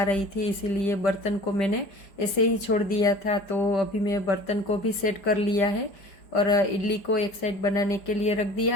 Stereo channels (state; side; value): late; right; 5.1 ms